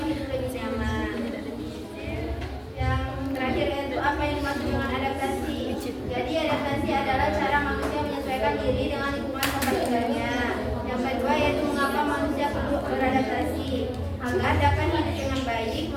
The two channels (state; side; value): identical; both; correlation 1.00